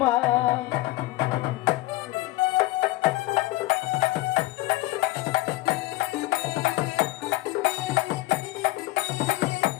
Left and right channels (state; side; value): quieter; right; 18.4 dB